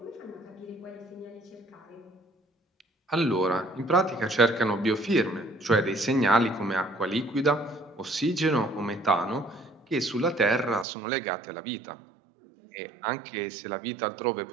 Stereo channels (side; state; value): left; drops out; at 10.9 s